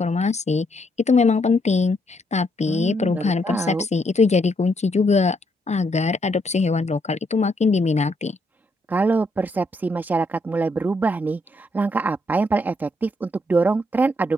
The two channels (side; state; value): both; normal; correlation 0.74